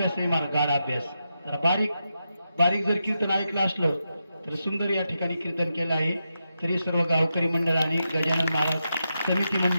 आहे मार गाढ अभ्यास जरा बारीक बारीक जर कीर्तन ऐकलं असलं तर सुंदर या ठिकाणी कीर्तन केलं आहे तरी सर्व गावकरी मंडळ आणि गजानन महाराज समिती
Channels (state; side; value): inverted; both; correlation -0.86